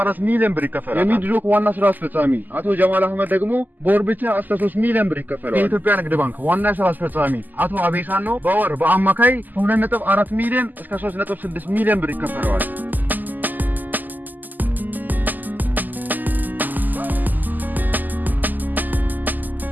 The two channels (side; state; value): left; late; 0.085 ms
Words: ሚሊዮን ብር ይከፈላል። የሚድሮክ ዋና ስራ አስፈጻሚ አቶ ጀማል አህመድ ደግሞ በወር ብቻ እስከ 3 ሚሊዮን ብር ይከፈላል። የኢትዮጵያ ንግድ ባንክ ዋና ስራ አስፈጻሚ አቶ አቤሳኖ በወር በአማካይ 2.4 ሚሊዮን እስከ 3.6 ሚሊዮን ብር ይከፈላል።